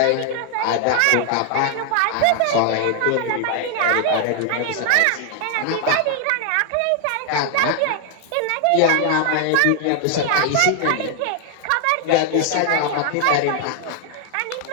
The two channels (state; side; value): different; both; correlation 0.00